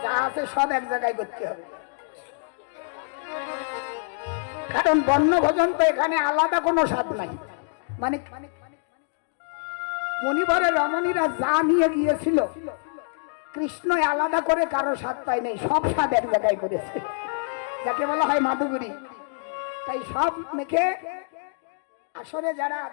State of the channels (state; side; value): silent; right; digital silence